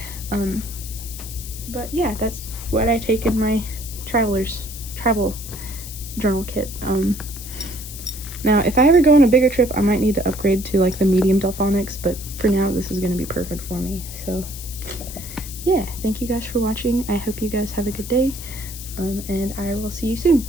But yeah, that's what I take in my travel journal kit. Now, if I ever go on a bigger trip, I might need to upgrade to like the medium Delphonics, but for now, this is going to be perfect for me. So yeah, thank you guys for watching. I hope you guys have a good day, and I will see you soon.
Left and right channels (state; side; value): noise; left; hiss, 12 dB below the sound